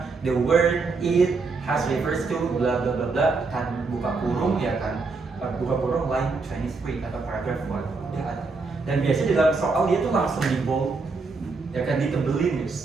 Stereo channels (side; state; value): left; quieter; 4.1 dB